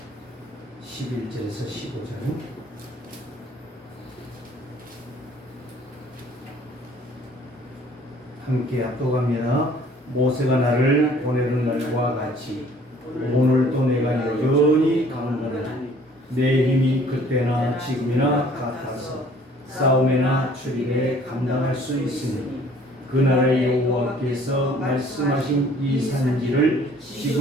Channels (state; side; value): normal; both; correlation 0.55